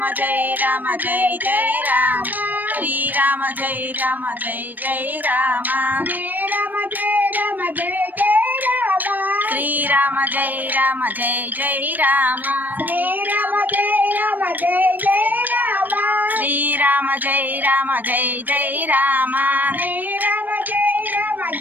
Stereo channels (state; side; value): late; left; 0.087 ms